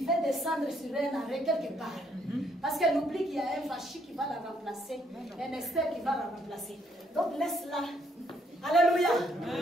fait descendre sur un arrêt quelque part. Parce qu'elle oublie qu'il y a un Vachi qui va la remplacer. Un Esther qui va la remplacer. Donc laisse-la. Alléluia.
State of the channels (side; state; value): both; normal; correlation 0.71